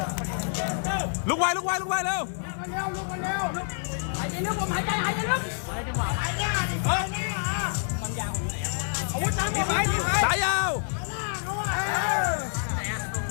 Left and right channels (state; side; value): silent; right; 60 dB below the other